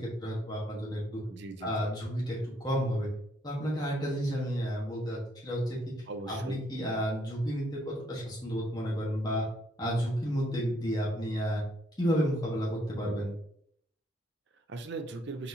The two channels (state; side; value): normal; both; correlation 0.70